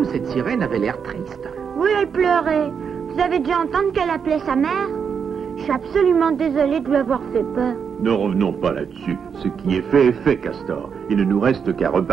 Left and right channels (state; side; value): quieter; left; 6.7 dB